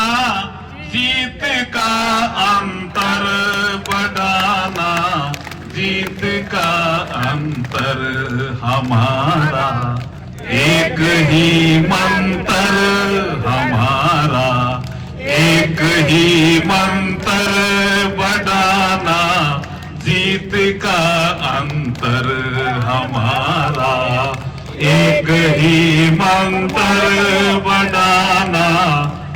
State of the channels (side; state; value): both; identical; correlation 1.00